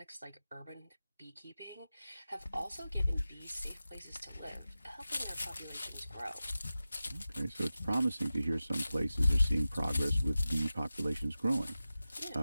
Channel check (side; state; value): both; inverted; correlation -0.95